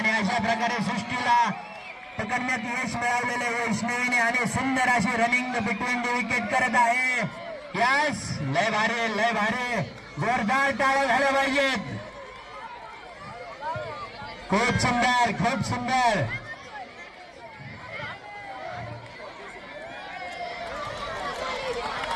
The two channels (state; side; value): identical; both; correlation 1.00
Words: अशा प्रकारे सृष्टीला पकडण्यात यश मिळवलेले वैष्णवीने आणि सुंदर अशी रनिंग बिटवीन द विकेट करत आहे यस लय भारी जोरदार टाळ्या झाल्या पाहिजेत खूप सुंदर